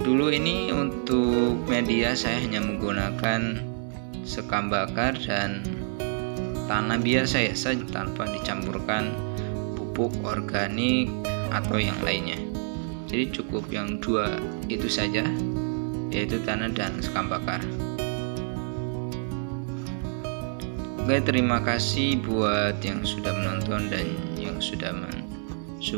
ini untuk media saya hanya menggunakan sekam bakar dan tanah biasa ya saja, tanpa dicampurkan pupuk organik atau yang lainnya. Jadi cukup yang 2 itu saja. yaitu tanah dan sekam bakar. Oke, terima kasih buat yang sudah menonton dan yang sudah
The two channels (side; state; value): left; silent; 60 dB below the other